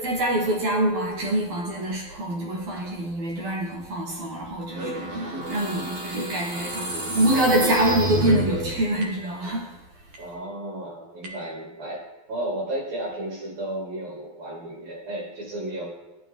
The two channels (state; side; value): late; left; 12 ms